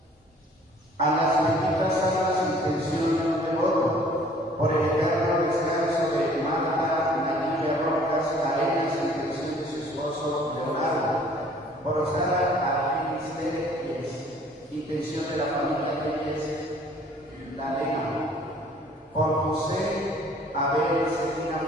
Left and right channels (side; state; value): both; normal; correlation 0.55